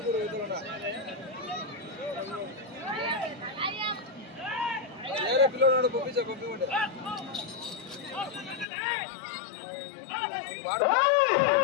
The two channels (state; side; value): drops out; right; at 8.7 s